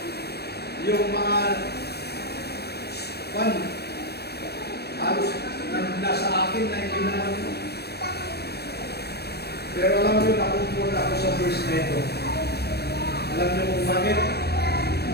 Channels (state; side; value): late; right; 0.47 ms